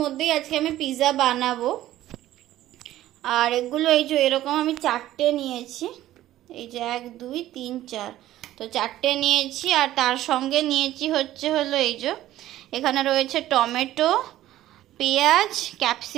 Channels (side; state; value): left; quieter; 14.1 dB